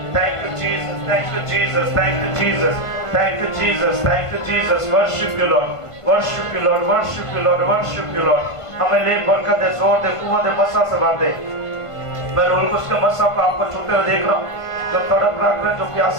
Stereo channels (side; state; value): right; late; 1.5 ms